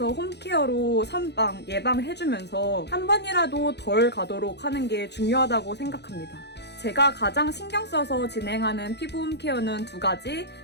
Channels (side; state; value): right; late; 0.49 ms